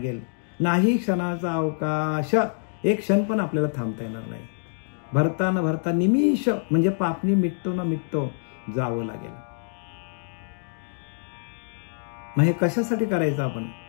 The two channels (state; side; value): silent; right; digital silence